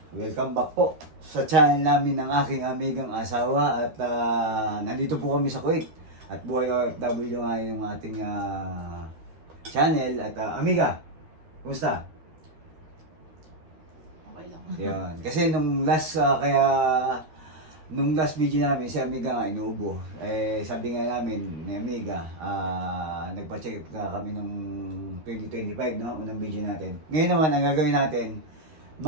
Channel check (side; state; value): left; late; 13 ms